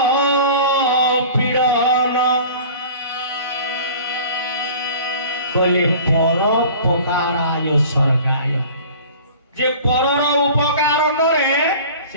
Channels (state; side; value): inverted; both; correlation -0.43